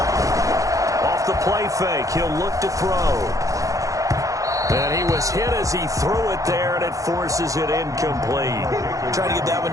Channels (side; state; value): left; late; 0.16 ms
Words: Off the play fake, he'll look to throw. And he was hit as he threw it there, and it forces it incomplete. Trying to get that